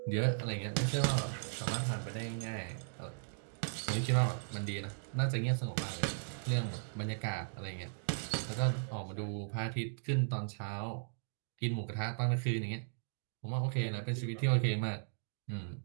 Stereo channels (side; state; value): left; silent; digital silence